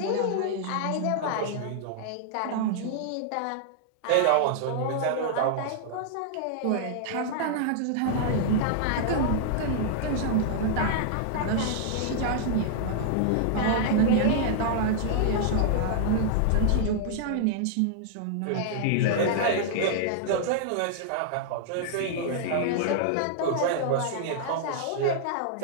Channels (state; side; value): different; both; correlation -0.01